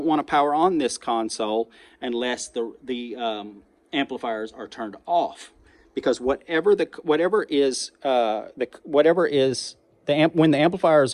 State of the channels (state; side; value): identical; both; correlation 1.00